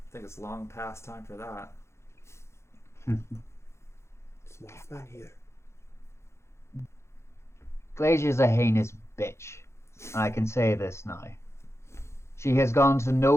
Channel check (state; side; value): late; right; 0.13 ms